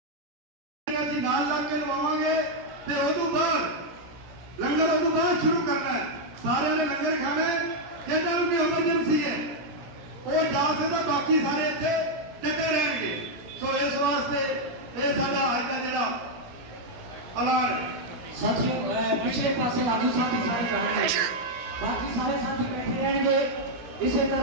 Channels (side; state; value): left; late; 17 ms